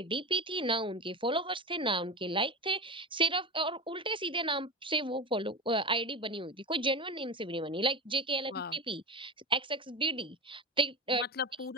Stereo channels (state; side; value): normal; both; correlation 0.23